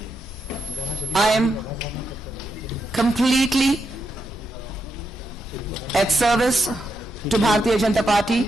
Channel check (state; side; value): normal; both; correlation 0.83